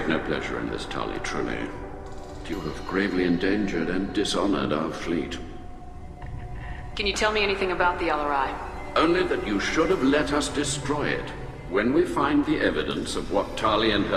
no pleasure in this, Tali, truly. You have gravely endangered and dishonored our fleet. Can you tell me anything about the Alarai? Only that you should have let us destroy it. When we find the evidence of what Tali and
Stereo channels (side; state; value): both; identical; correlation 1.00